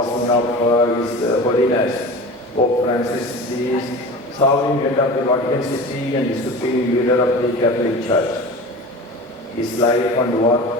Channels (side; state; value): both; normal; correlation 0.34